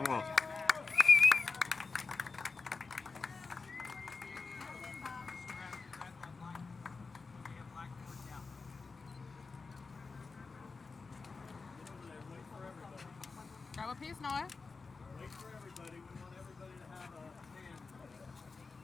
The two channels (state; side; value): quieter; right; 4.4 dB